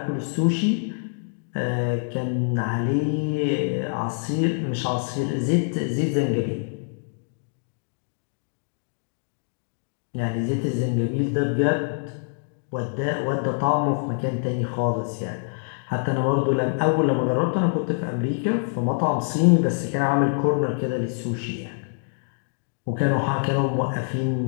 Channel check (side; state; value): right; silent; digital silence